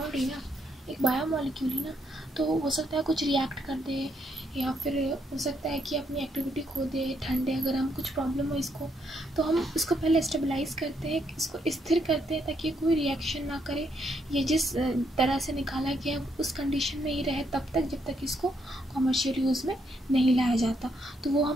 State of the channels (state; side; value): normal; both; correlation 0.75